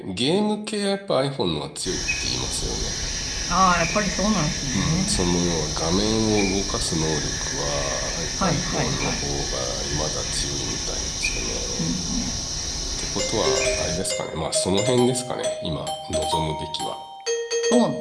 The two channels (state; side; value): identical; both; correlation 1.00